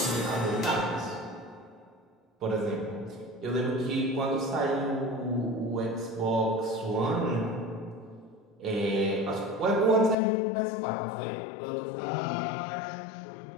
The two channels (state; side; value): drops out; right; at 10.2 s